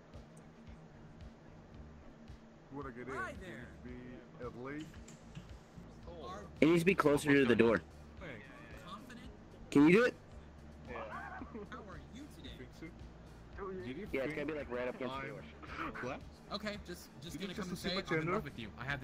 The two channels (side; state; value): both; identical; correlation 1.00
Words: Hi there. Be at least. It needs to be closer to the door. Can you do it? Yeah, it's gotta be like right up against the door. What? Okay, just gonna come and assume say a I'm in gender? love with you. I have